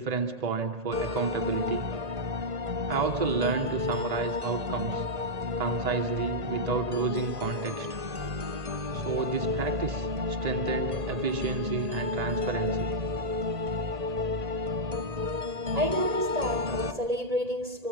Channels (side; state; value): left; late; 1.8 ms